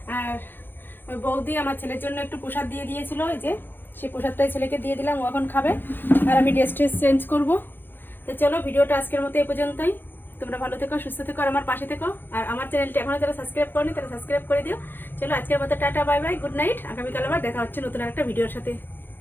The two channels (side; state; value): right; late; 0.097 ms